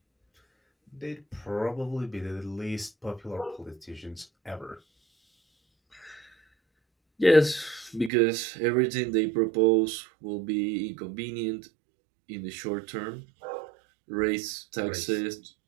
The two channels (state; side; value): drops out; left; at 8.1 s